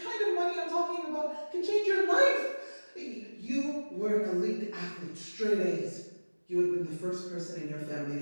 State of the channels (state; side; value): inverted; both; correlation -1.00